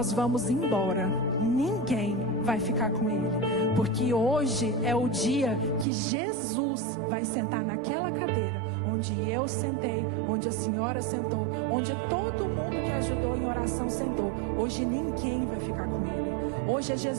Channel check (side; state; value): left; drops out; at 5.9 s